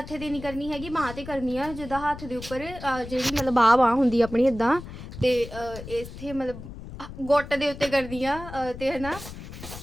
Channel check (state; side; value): noise; left; rumble, 12 dB below the sound